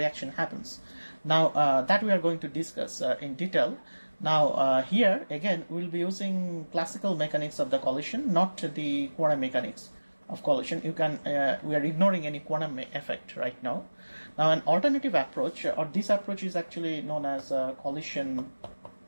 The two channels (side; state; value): both; inverted; correlation -1.00